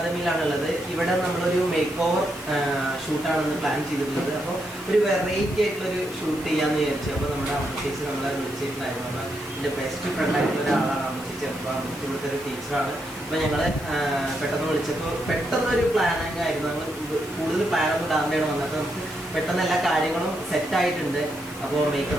ഇവിടെ നമ്മളൊരു മേക്ക് ഓവർ ഷൂട്ടാണെന്ന് പ്ലാൻ ചെയ്തിട്ടുള്ളത്. അപ്പോൾ ഒരു വെറൈറ്റി ആയിട്ടുള്ളൊരു ഷൂട്ട് ചെയ്യാമെന്ന് വിചാരിച്ചു. അപ്പോൾ നമ്മുടെ അമ്മച്ചേച്ചി നമ്മളെ വിളിച്ചിട്ടുണ്ടായിരുന്നു. അപ്പോൾ എൻ്റെ ബെസ്റ്റ് ഫ്രണ്ട് ആയിട്ടുള്ള ഒരാളാണ് അമ്മച്ചേച്ചി. അപ്പോൾ അമ്മച്ചി ഇവിടുത്തെ ഒരു ടീച്ചറാണ്. അപ്പോൾ ഞങ്ങൾ പെട്ടെന്ന് വിളിച്ചപ്പോൾ പെട്ടെന്നൊരു പ്ലാനിങ് ആയിരുന്നു. നമ്മൾ കൂടുതൽ പ്ലാനൊന്നും ഇടാതെയാണ് വന്നത്. നമുക്ക് പെട്ടെന്ന് എല്ലാ കാര്യങ്ങളും സെറ്റായിട്ടുണ്ട്. അപ്പോൾ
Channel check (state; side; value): noise; left; hiss, 18 dB below the sound